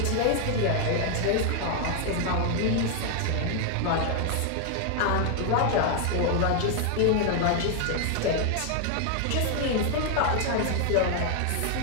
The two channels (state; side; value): different; both; correlation 0.00